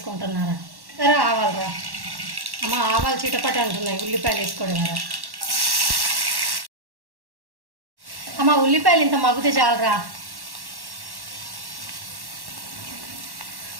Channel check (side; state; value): left; late; 1.1 ms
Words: సరే ఆవాలరా అమ్మ, ఆవాలు చిటపట అంటున్నాయి ఉల్లిపాయలు వేసుకోవడం కదా అమ్మ. ఉల్లిపాయలు ఇంత మగ్గితే చాలరా.